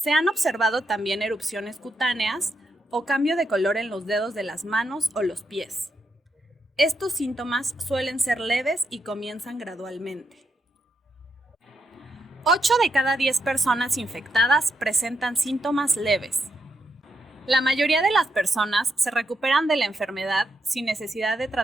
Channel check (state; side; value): normal; both; correlation 0.81